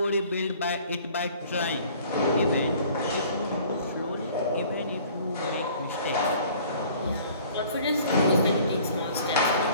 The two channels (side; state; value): both; inverted; correlation -0.52